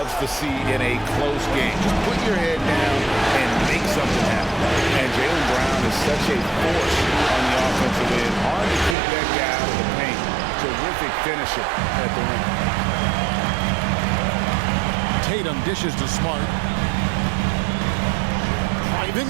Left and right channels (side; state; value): left; drops out; at 9.0 s